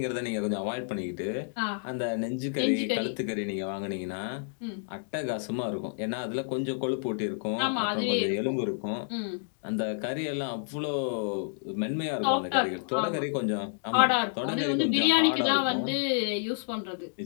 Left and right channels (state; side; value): silent; right; digital silence